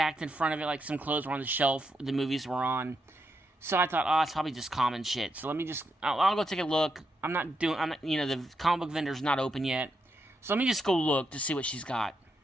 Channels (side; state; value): both; normal; correlation 0.82